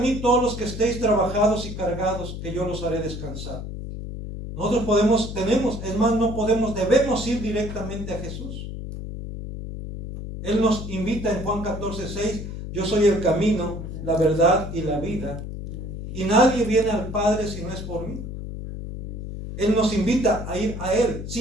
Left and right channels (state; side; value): noise; left; hum, 8 dB below the sound